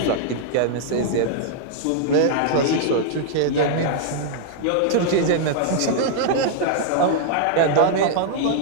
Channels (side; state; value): both; different; correlation -0.01